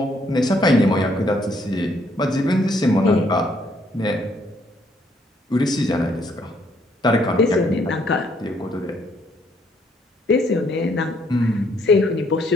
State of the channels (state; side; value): normal; both; correlation 0.69